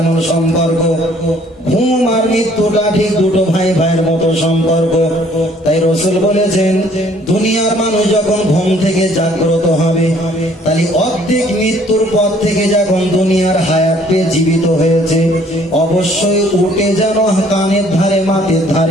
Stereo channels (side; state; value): both; normal; correlation 0.60